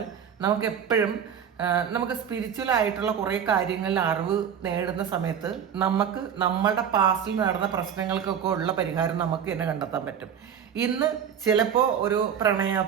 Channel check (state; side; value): quieter; left; 8.2 dB